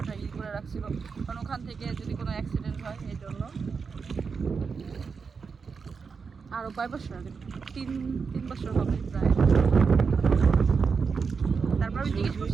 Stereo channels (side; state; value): left; quieter; 5.4 dB